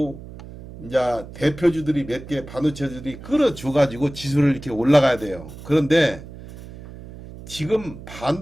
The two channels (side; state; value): right; noise; hum, 15 dB below the sound